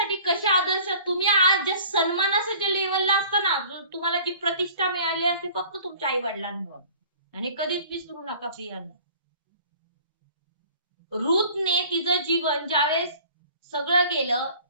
कसे आदर्श, तुम्ही आज ज्या सन्मानाच्या लेवलला असताना, तुम्हाला जी प्रतिष्ठा मिळाली असते फक्त तुमच्या आई वडिलांमुळे, आणि कधीच विसरू नका प्रियांनो. रूथने तिचं जीवन ज्यावेळेस सगळं गेलं,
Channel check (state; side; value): inverted; both; correlation -0.48